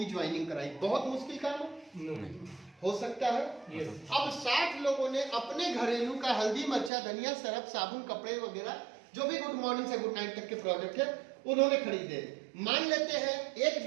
ज्वाइनिंग कराई। बहुत मुश्किल काम है? हो सकता है। अब 60 लोगों ने अपने घरेलू का हल्दी, मिर्चा, धनिया, सरफ, साबुन, कपड़े वगैरह जो भी गुड मॉर्निंग से गुड नाइट तक के प्रोडक्ट है उन्होंने खरीदे। मान लेते हैं एक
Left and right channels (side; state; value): left; drops out; at 6.9 s